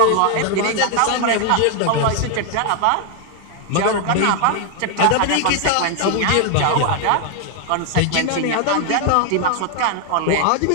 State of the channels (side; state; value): both; different; correlation 0.01